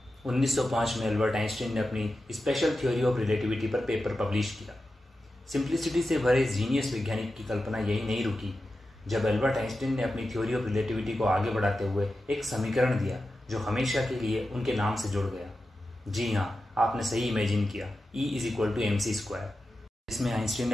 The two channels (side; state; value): both; normal; correlation 0.92